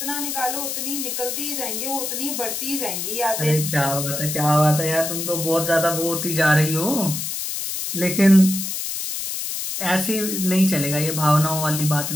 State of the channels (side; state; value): left; noise; hiss, 4 dB below the sound